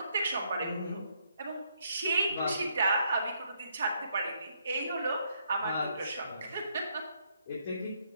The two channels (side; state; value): both; inverted; correlation -0.73